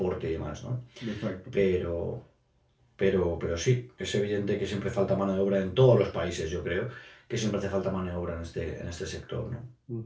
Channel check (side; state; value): both; identical; correlation 1.00